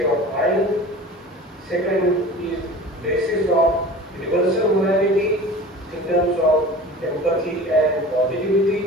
of mind. Second is basis of universal morality in terms of empathy and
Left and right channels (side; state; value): both; normal; correlation 0.38